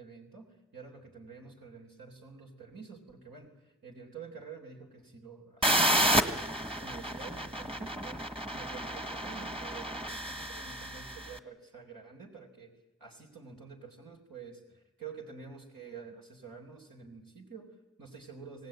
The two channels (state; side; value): normal; both; correlation 0.33